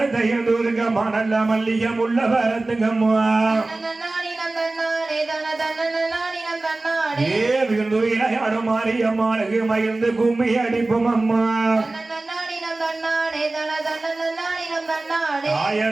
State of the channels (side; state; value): left; quieter; 3.1 dB